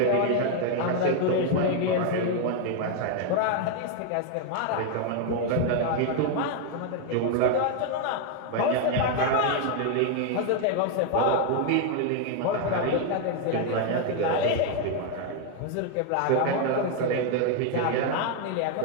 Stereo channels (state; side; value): different; both; correlation 0.01